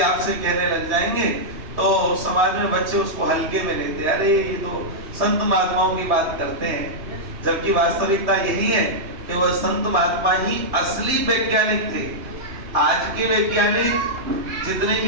आपसे कहने लग जाएंगे तो समाज में बच्चे उसको हल्के में लेते हैं। अरे ये तो संत महात्माओं की बात करते हैं, जबकि वास्तविकता यही है कि वह संत महात्मा ही असली वैज्ञानिक थे। आज के वैज्ञानिक जितने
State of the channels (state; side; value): late; left; 3.2 ms